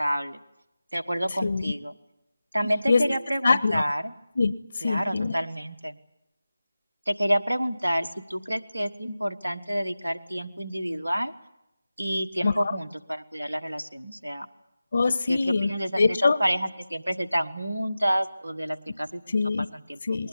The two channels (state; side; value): inverted; both; correlation -0.95